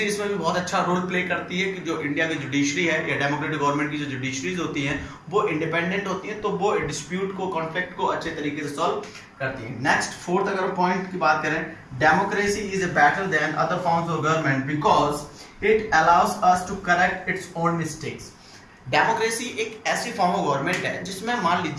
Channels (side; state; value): both; identical; correlation 1.00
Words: इसमें भी बहुत अच्छा रोल प्ले करती है कि जो इंडिया की जुडिशरी है या डेमोक्रेटिक गवर्नमेंट की जो जुडिशरीज होती हैं वो इंडिपेंडेंट होती हैं, तो वो डिस्प्यूट को, कॉन्फ्लिक्ट को अच्छे तरीके से सॉल्व करती है। नेक्स्ट, फोर्थ अगर पॉइंट की बात करें, democracy is better than other forms of government because it allows us to correct its own mistakes. Democracy एक ऐसी फॉर्म ऑफ गवर्नमेंट है जिसमें मान